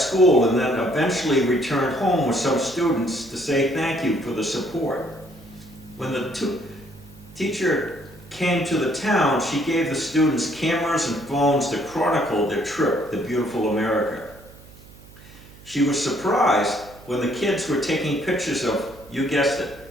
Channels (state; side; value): noise; right; hum, 22 dB below the sound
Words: and then eventually returned home with some students to say thank you for the support. When the teacher came to the town, she gave the students cameras and phones to chronicle their trip to beautiful America. She was surprised when the kids were taking pictures of, you guessed